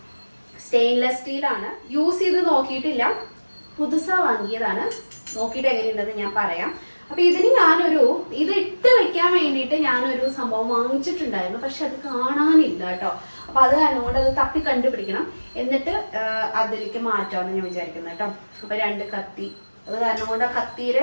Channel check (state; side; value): inverted; both; correlation -1.00